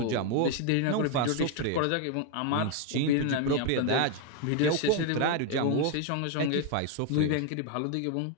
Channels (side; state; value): both; different; correlation 0.01